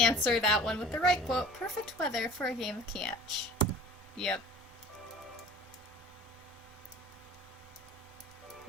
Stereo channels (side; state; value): both; normal; correlation 0.45